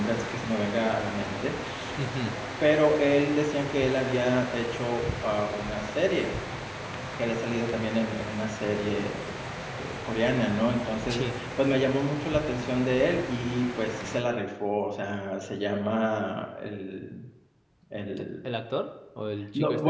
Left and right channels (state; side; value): identical; both; correlation 1.00